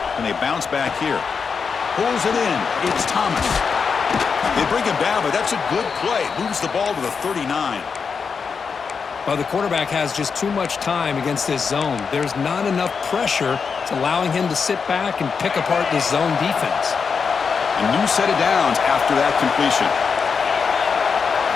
And they bounce back here. Pulls it in. It's Thomas. They bring him down, but that's a good play. Moves the ball to the 39. Well, the quarterback has just too much time against this zone. There's not enough pressure. It's allowing him to sit back and pick apart this zone defense. A new set of downs after that completion.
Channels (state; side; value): quieter; right; 5.7 dB